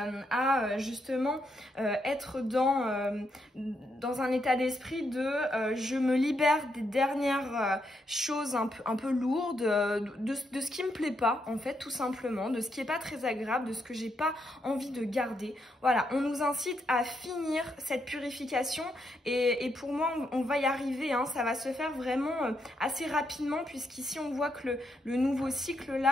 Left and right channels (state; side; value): normal; both; correlation 0.79